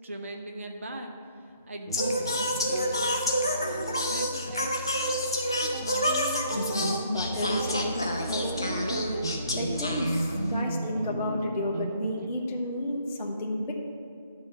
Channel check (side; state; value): both; inverted; correlation -0.64